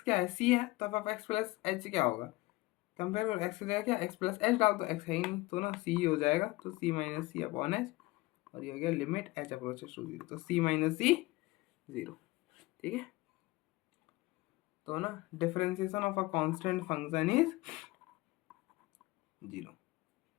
क्या है, सी है, तो F of x plus H क्या होगा, कंपेयर करो एक्स की जगह क्या एक्स प्लस एच डाल, तो एक्स है ही नहीं, तो ना सी हो जाएगा, तो C minus C upon H, और ये हो गया limit H approaches to zero, तो सी माइनस सी जीरो। ठीक है, तो ना differentiation of a constant function is zero,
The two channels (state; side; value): quieter; right; 20.8 dB